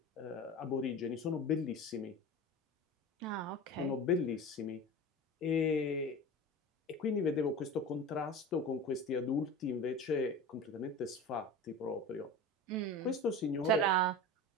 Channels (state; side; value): normal; both; correlation 0.32